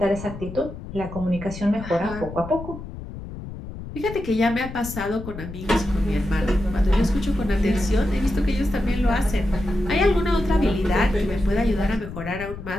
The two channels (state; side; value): noise; left; rumble, 11 dB below the sound